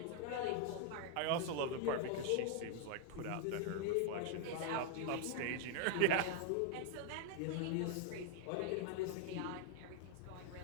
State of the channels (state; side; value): different; both; correlation 0.00